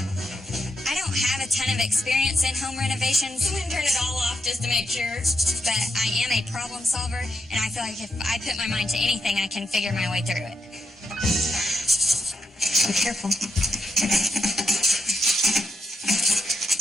I don't have a ton of experience in home renovations. I'm going to turn it all off just to make sure. But I am a problem solver, and I feel like if I put my mind to anything, I can figure my way through it. Be careful.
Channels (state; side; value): normal; both; correlation 0.83